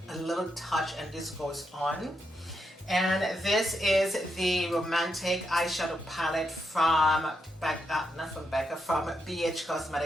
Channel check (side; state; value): both; normal; correlation 0.82